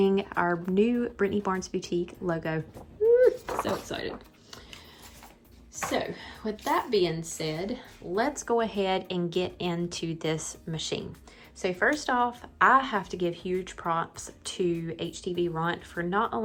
our new Brittany Barnes Boutique logo. Woo, so excited. So with that being said, let's go ahead and get into this machine. So first off, I have to give huge props to Htvront for not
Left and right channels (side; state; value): both; identical; correlation 1.00